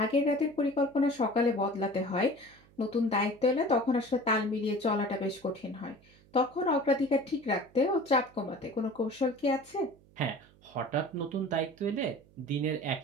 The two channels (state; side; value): noise; right; hum, 27 dB below the sound